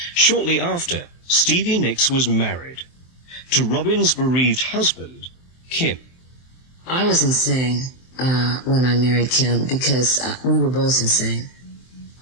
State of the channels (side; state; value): right; late; 23 ms